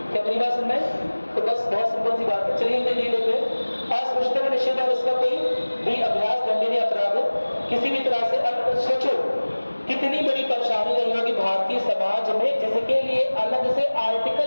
क्या मेरी बात सुन रहे हैं। तो बस बहुत सिंपल सी बात है, चलिए ये लेते हैं अस्पृश्यता का निषेध और उसका कोई भी अभ्यास दंडनीय अपराध है किसी भी तरह से। अब सोचो कितनी बड़ी परेशानी रही होगी भारतीय समाज में, जिसके लिए अलग से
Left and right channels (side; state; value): both; inverted; correlation -1.00